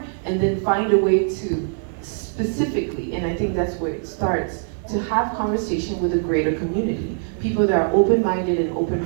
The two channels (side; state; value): left; silent; 58 dB below the other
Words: and then find a way to specifically, and I think that's where it starts, to have conversation with a greater community. People that are open-minded and